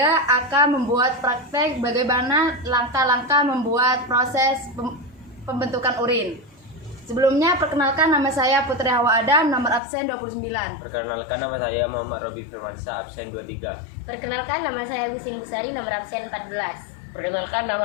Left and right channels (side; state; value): right; drops out; at 9.8 s